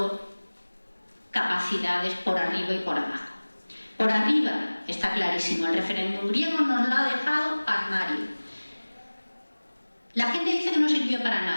capacidades por arriba y por abajo. Por arriba está clarísimo, el referéndum griego nos lo ha dejado armario. La gente dice que no sirvió para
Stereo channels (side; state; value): both; inverted; correlation -1.00